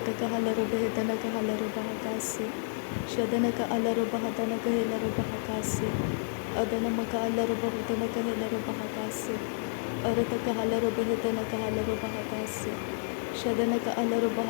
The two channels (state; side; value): silent; right; 58 dB below the other